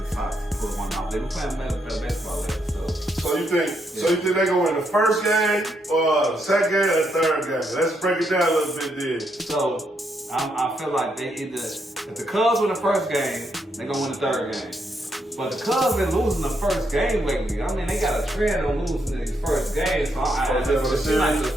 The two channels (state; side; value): normal; both; correlation 0.78